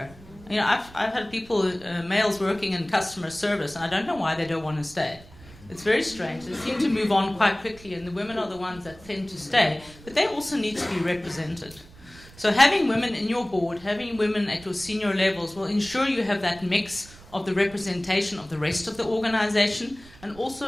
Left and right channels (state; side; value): noise; right; rumble, 21 dB below the sound